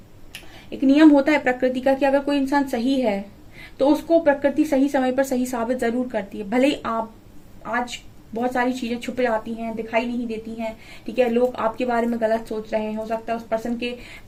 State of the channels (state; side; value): identical; both; correlation 1.00